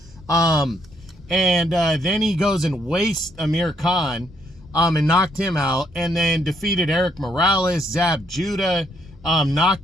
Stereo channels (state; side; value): normal; both; correlation 0.72